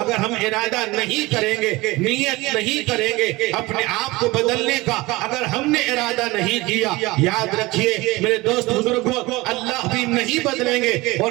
ہم ارادہ نہیں کریں گے، نیت نہیں کریں گے اپنے آپ کو بدلنے کا، اگر ہم نے ارادہ نہیں کیا، یاد رکھیے میرے دوست بزرگوں اللہ بھی نہیں بدلیں گے۔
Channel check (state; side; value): quieter; left; 21.3 dB